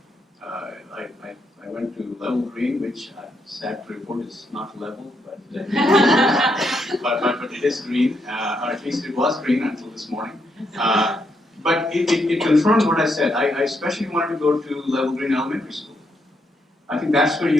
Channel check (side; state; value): both; normal; correlation 0.78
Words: I went to Level Green, which I'm sad to report is not level, but But it is green, or at least it was green until this morning. But it confirmed what I said. I especially wanted to go to Level Green Elementary School. I think that's where